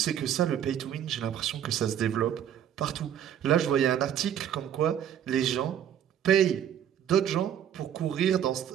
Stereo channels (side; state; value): left; quieter; 9.8 dB